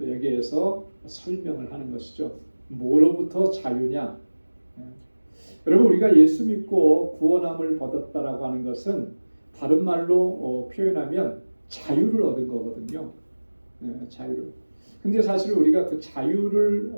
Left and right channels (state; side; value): inverted; both; correlation -1.00